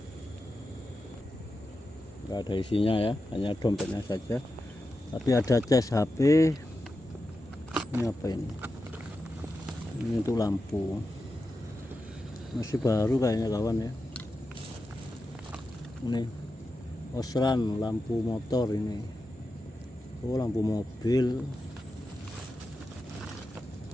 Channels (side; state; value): both; normal; correlation 0.90